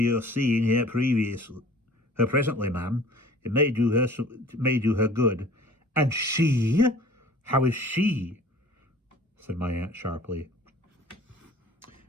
your seeing her presently, ma'am. It may do her good. And she? How is she? Said my aunt sharply.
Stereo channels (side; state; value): both; normal; correlation 0.48